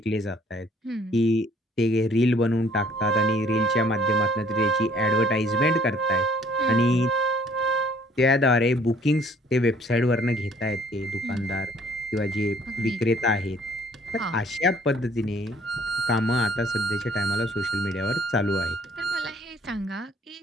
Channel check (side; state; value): both; normal; correlation 0.59